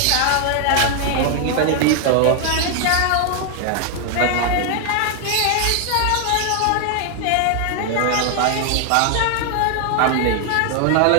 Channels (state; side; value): different; both; correlation 0.00